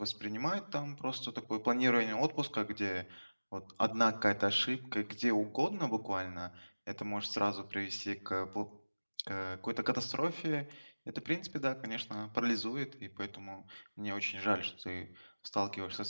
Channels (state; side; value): inverted; both; correlation -1.00